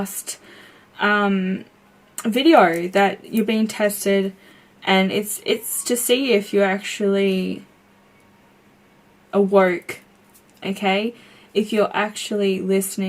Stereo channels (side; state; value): both; identical; correlation 1.00